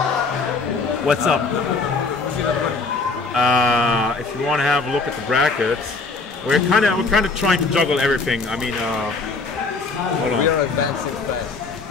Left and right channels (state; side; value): quieter; right; 4.0 dB